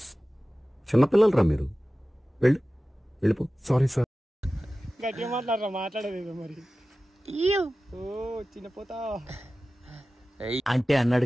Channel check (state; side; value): normal; both; correlation 0.96